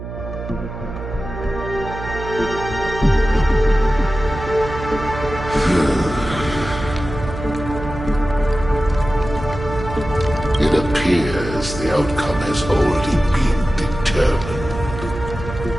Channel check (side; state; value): right; noise; hum, 9 dB below the sound